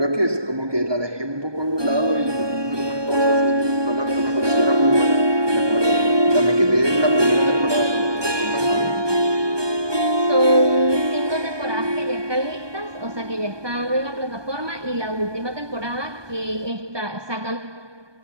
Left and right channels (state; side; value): late; left; 1.2 ms